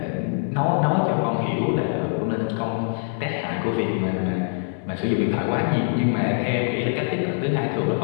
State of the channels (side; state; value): right; silent; digital silence